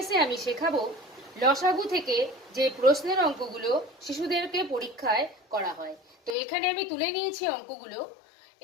আমি শেখাবো লসাগু থেকে যে প্রশ্নের অঙ্কগুলো শিশুদেরকে পরীক্ষায় করা হয়। তো এখানে আমি তুলে নিয়েছি অঙ্কগুলো।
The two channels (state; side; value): drops out; right; at 6.4 s